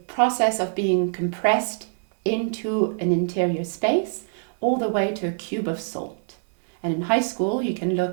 process of being compressed into an interior space all the way to a cube of salt. And in high school, you can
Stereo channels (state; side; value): silent; left; 62 dB below the other